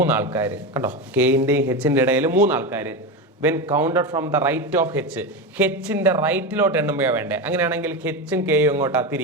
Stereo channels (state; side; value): normal; both; correlation 0.18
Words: ആൾക്കാർ കണ്ടോ? കെയിൻ്റെയും ഹെച്ചിൻ്റെ ഇടയിൽ 3 ആൾക്കാർ. When counted from the right of H. ഹെച്ചിൻ്റെ റൈറ്റിലോട്ട് എണ്ണുമ്പോഴാണ് വേണ്ടേ? അങ്ങനെയാണെങ്കിൽ ഹെച്ചും കെയും ഇങ്ങോട്ടാ